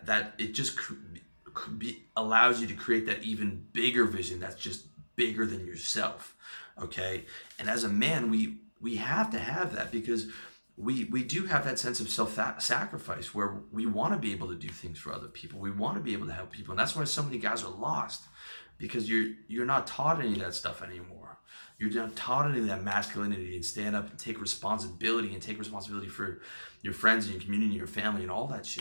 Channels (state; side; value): inverted; both; correlation -1.00